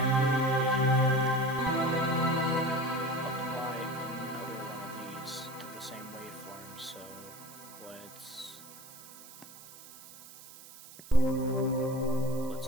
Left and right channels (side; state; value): right; noise; hiss, 18 dB below the sound